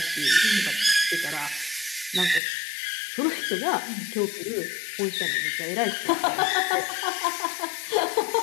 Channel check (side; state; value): right; drops out; at 2.4 s